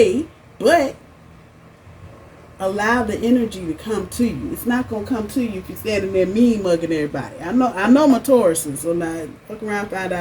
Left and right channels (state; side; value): identical; both; correlation 1.00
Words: but allow the energy to come to you. It's not going to come to you if you're standing there mean mugging everybody. I know my Tauruses, so now fuck around, find